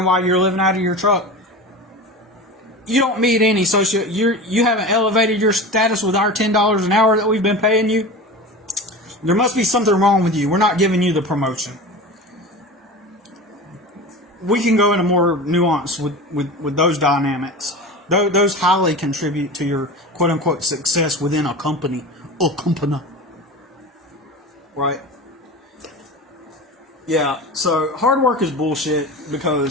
why you're living out of your truck, you don't meet any you haven't elevated your status with our $10 an hour that we've been paying you. There must be something wrong with you. We're not giving you the promotion. We can go into more nuance with those dynamics. Those highly contribute to your quote-unquote success within a company. Right? Yeah, so hard work is bullshit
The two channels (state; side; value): normal; both; correlation 0.31